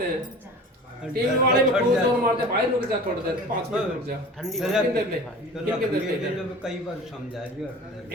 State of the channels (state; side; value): normal; both; correlation 0.39